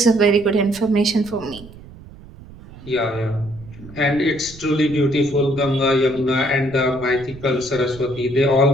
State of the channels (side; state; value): right; noise; rumble, 18 dB below the sound